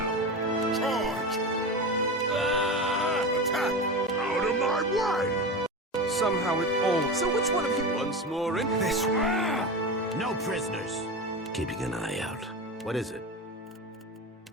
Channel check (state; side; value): normal; both; correlation 0.24